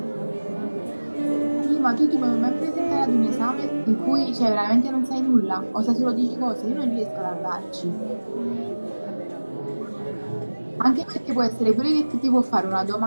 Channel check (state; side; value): inverted; both; correlation -1.00